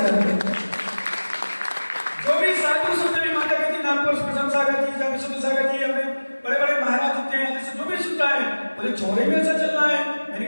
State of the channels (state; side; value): inverted; both; correlation -1.00